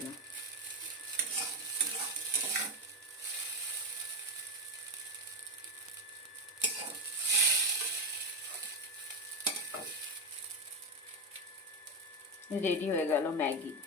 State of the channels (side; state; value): both; normal; correlation 0.12